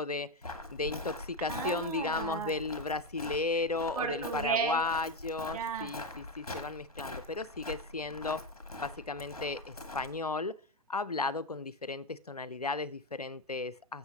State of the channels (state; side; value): normal; both; correlation 0.11